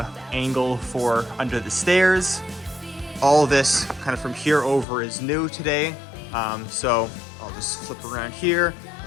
angle for under the stairs. All this kind of from here over is new today. So I'll just flip around here.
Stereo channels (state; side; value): drops out; right; at 4.9 s